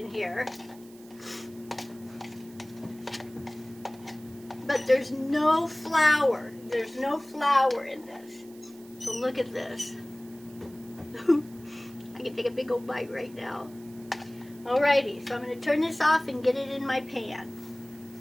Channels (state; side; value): noise; right; hiss, 24 dB below the sound